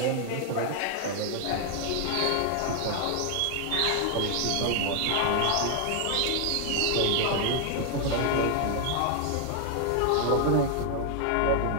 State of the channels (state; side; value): different; both; correlation 0.00